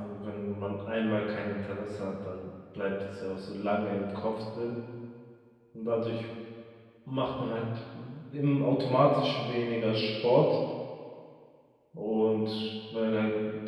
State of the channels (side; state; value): both; identical; correlation 1.00